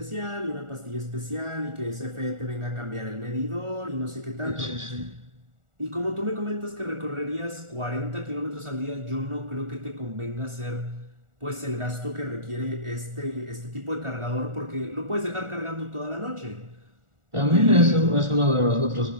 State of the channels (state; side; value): late; left; 1.4 ms